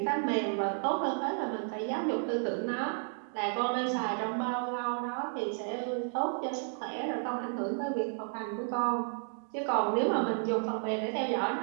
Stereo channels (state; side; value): silent; left; 55 dB below the other